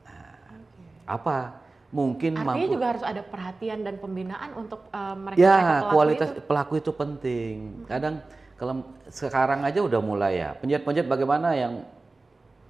Nah, apa? Mungkin artinya mampu. juga harus ada perhatian dan pembinaan untuk mereka Ya, kualitas pelaku itu penting. Kadang kalau sekarang aja udah mulai ya. Penjahit-penjahit bagaimana yang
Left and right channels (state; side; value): quieter; left; 3.4 dB